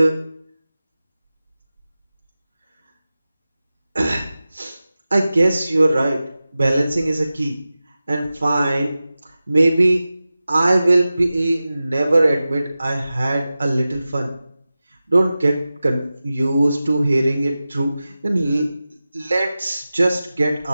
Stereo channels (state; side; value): inverted; both; correlation -0.95